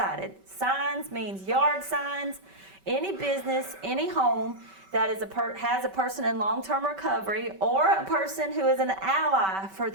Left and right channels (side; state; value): left; late; 5.2 ms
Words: Signs means yard signs. Any business, any home that is has a person in long-term recovery or a person who is an ally for